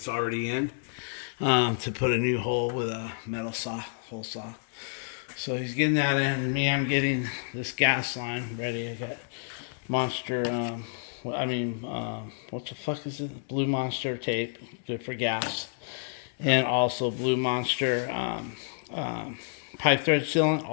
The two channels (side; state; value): right; silent; digital silence